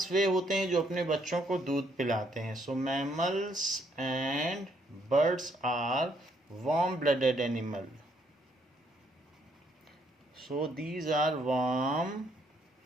वे होते हैं जो अपने बच्चों को दूध पिलाते हैं. So mammals and birds are warm-blooded animal. So these are warm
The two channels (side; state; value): both; normal; correlation 0.70